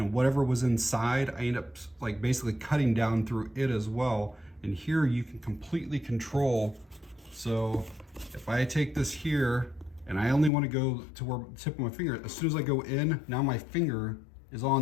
whatever was inside, I end up like basically cutting down through it as well. And here you can completely control. So if I take this here and I only want to go to where the tip of my finger, as soon as I go in, now my finger is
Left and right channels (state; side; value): drops out; right; at 10.5 s